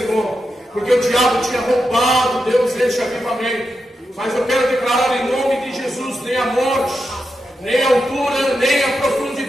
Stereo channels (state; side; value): normal; both; correlation 0.87